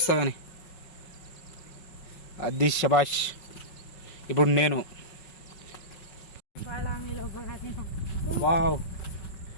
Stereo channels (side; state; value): right; late; 5.4 ms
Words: కానీ. అది శబాష్. ఇప్పుడు నేను వావ్